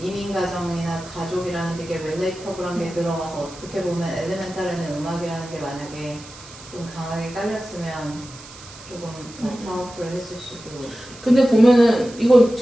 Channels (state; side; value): noise; right; hiss, 18 dB below the sound